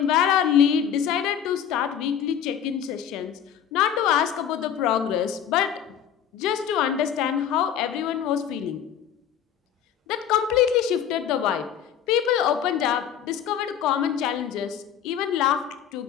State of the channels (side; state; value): right; quieter; 9.0 dB